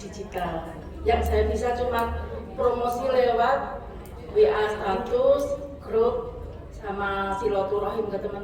Yang saya bisa cuma promosi lewat WA status, grup, sama silaturahim ke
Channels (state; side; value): identical; both; correlation 1.00